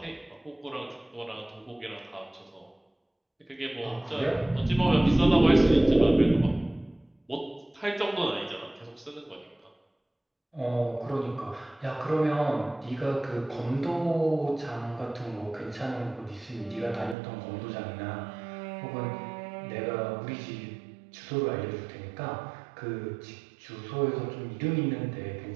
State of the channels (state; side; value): drops out; left; at 17.2 s